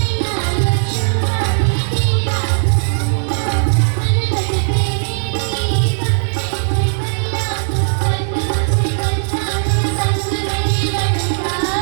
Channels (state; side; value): silent; left; digital silence